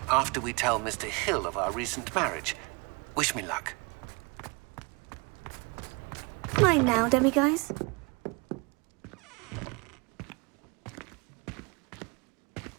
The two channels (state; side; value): quieter; left; 29.4 dB